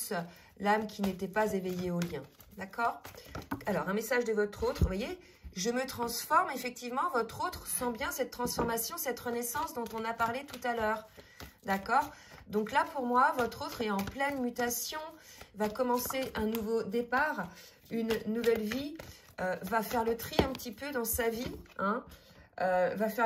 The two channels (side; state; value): both; identical; correlation 1.00